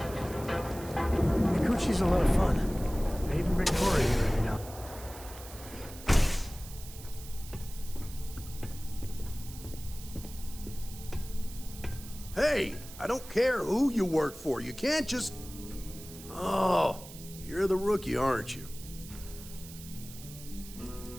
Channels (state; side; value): noise; right; hiss, 16 dB below the sound